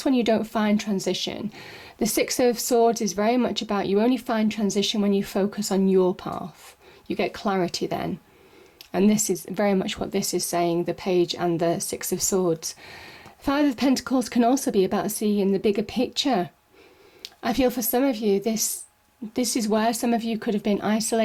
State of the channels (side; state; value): both; identical; correlation 1.00